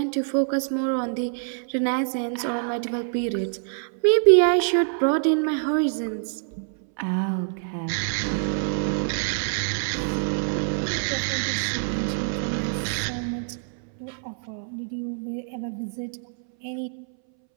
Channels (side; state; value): left; silent; 61 dB below the other